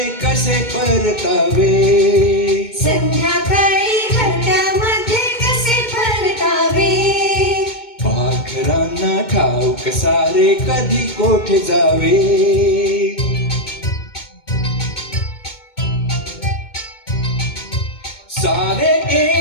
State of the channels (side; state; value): right; late; 2.2 ms